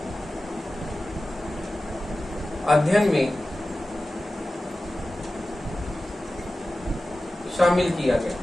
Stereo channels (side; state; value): both; normal; correlation 0.95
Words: अध्ययन में शामिल किया गया।